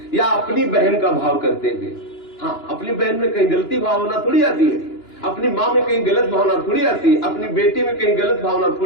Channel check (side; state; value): right; late; 2.9 ms